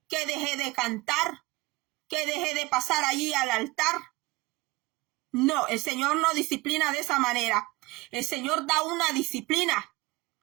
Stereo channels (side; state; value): left; quieter; 22.2 dB